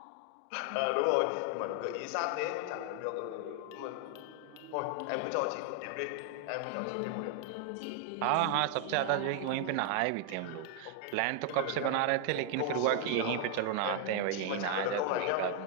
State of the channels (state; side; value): different; both; correlation 0.00